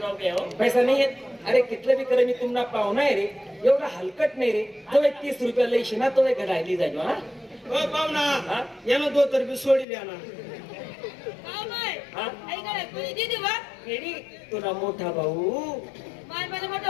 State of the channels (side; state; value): right; drops out; at 9.9 s